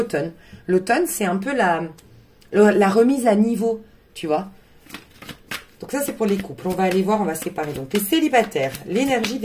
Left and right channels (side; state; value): both; identical; correlation 1.00